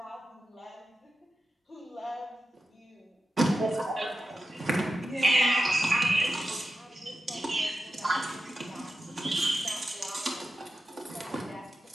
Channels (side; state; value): both; normal; correlation 0.91